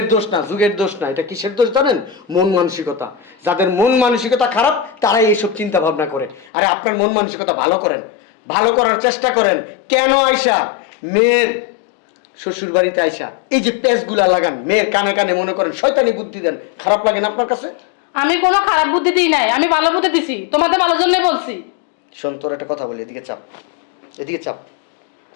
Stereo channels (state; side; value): drops out; right; at 6.5 s